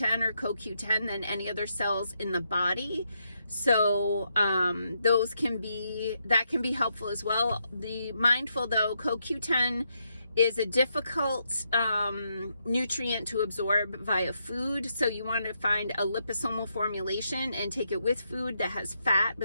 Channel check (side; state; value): both; inverted; correlation -0.80